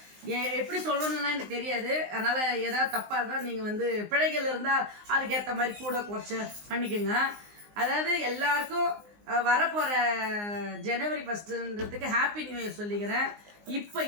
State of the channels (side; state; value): left; late; 19 ms